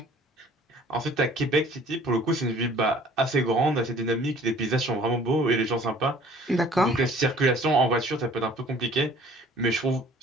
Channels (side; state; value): both; normal; correlation 0.53